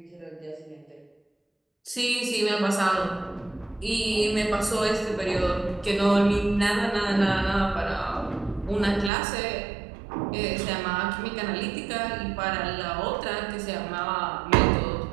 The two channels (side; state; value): left; drops out; at 9.1 s